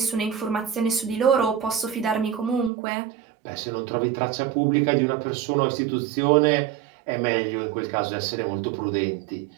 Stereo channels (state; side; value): drops out; left; at 2.7 s